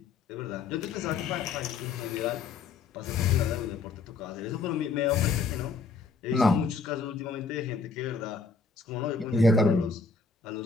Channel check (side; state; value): right; quieter; 4.5 dB